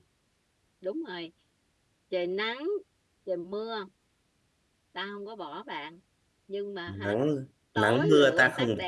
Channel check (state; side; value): identical; both; correlation 1.00